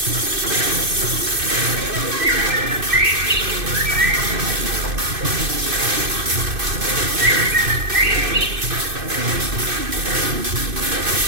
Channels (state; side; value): late; left; 2.6 ms